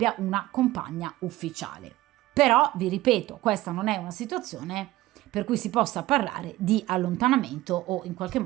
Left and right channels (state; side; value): quieter; left; 17.0 dB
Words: una compagna ufficiale. Però vi ripeto, questa non è una situazione per cui si possa parlare di allontanamento o in qualche